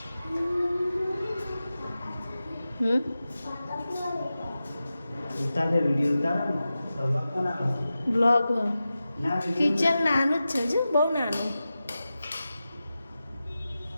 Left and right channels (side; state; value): both; inverted; correlation -0.93